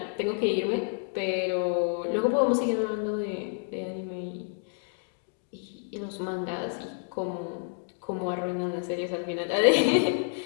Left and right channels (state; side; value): silent; right; 58 dB below the other